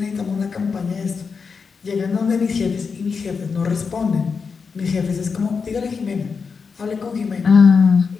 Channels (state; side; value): quieter; right; 5.4 dB